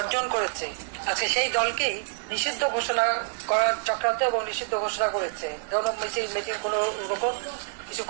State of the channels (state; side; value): silent; left; digital silence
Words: করেছে, আজকে সেই দলকেই নিষিদ্ধ ঘোষণা করার চক্রান্ত এবং নিষিদ্ধ ঘোষণা করেছে। মিছিল কোনো রকম কিছু